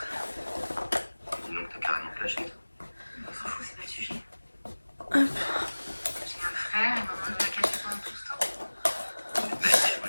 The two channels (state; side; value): inverted; both; correlation -1.00